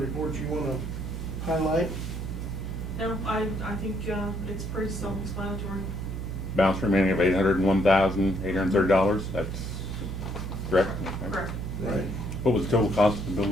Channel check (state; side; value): noise; right; hum, 5 dB below the sound